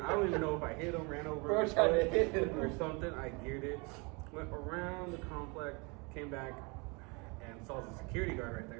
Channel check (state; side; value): quieter; left; 29.8 dB